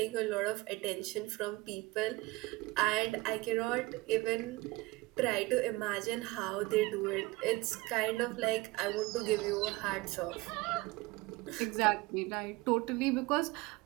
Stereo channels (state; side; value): quieter; left; 21.5 dB